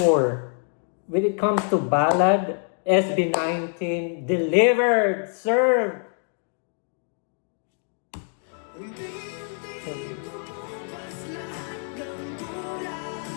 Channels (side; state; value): right; silent; 57 dB below the other